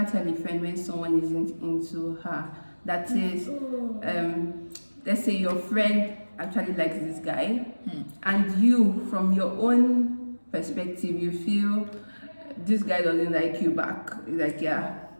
tell a friend when someone isn't into her. That is, let's say your friend actually likes this guy, and you, from your own perspective, you feel this guy doesn't like you back. Like, yeah,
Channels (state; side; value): inverted; both; correlation -1.00